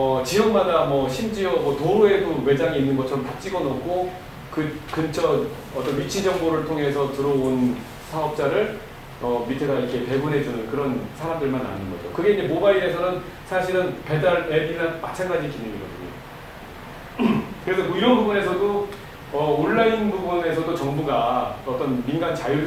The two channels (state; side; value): identical; both; correlation 1.00